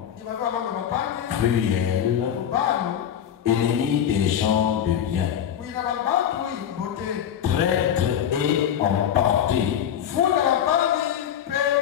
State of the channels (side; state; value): right; quieter; 9.5 dB